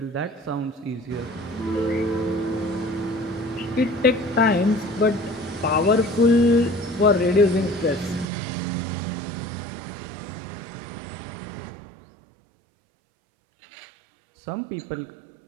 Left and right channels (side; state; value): left; drops out; at 8.2 s